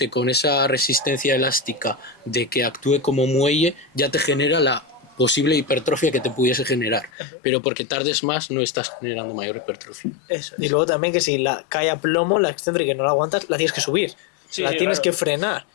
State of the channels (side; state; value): right; drops out; at 7.1 s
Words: con esa resistencia elástica de que actúe como muelle ya te genera la posible hipertrofia que te pudiese generar, pero porque tardes más no estás generando mayor hipertrofia. Eso es. Y luego también que si la cae a plomo, la excéntrica y no la aguantas, la tienes que subir. La tienes que frenar,